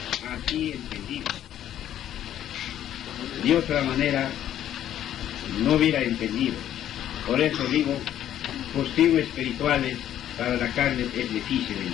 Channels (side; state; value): right; quieter; 11.3 dB